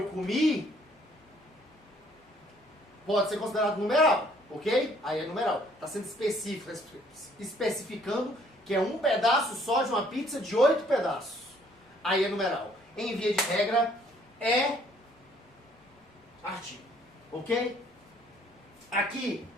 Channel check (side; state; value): both; normal; correlation 0.62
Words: comi pode ser considerado numeral, ok? Aí é numeral. Está sendo específico, especificando que é um pedaço só de uma pizza de 8 pedaços. Aí é numeral. Em via de regra, é artigo, ok? Aqui